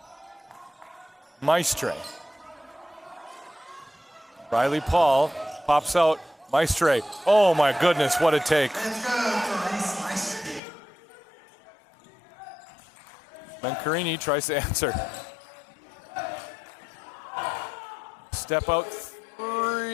Maestre. Riley Paul pops out. Maestre. Oh my goodness, what a take. Mencarini tries to answer. Step out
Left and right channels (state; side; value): drops out; right; at 10.6 s